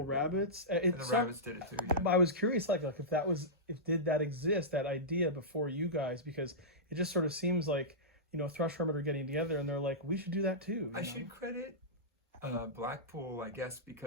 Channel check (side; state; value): both; normal; correlation -0.15